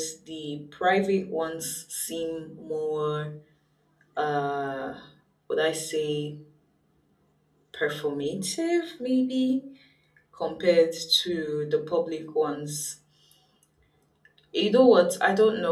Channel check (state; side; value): identical; both; correlation 1.00